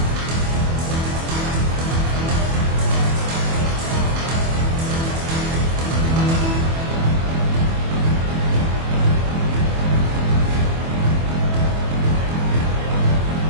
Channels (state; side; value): late; left; 24 ms